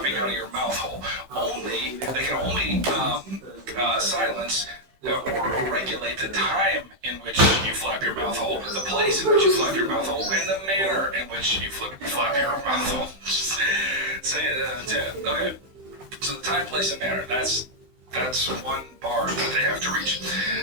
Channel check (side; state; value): left; late; 16 ms